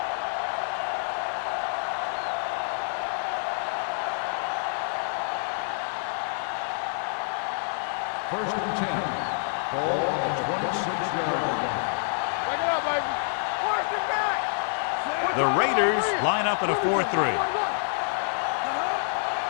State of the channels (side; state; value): right; silent; digital silence